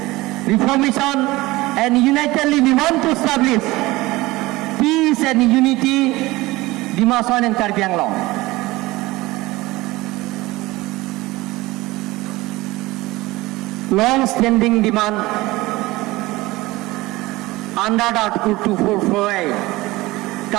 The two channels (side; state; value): left; quieter; 19.9 dB